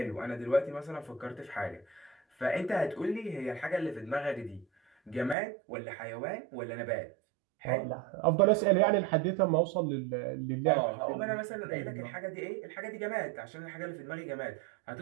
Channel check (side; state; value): left; drops out; at 5.4 s